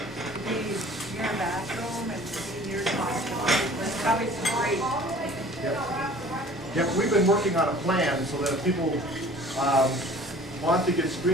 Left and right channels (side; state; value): both; normal; correlation 0.48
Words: be near a bathroom and be near the hospital. It's probably great. Yep. Yep. We've been working on a plan so that if people want to get